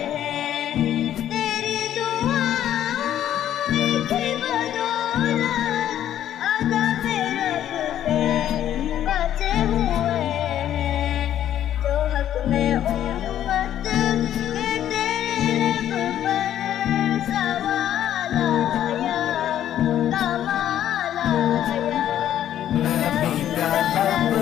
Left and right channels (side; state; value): right; quieter; 11.2 dB